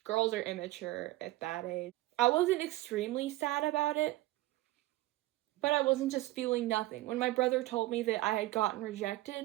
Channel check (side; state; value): left; quieter; 17.8 dB